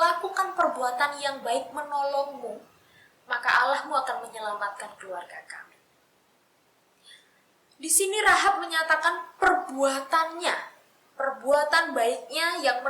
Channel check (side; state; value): both; identical; correlation 1.00